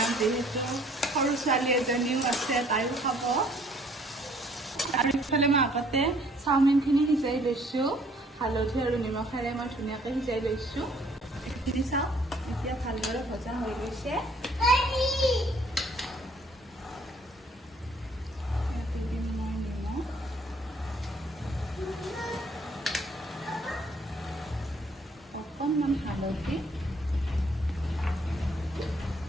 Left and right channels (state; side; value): normal; both; correlation 0.61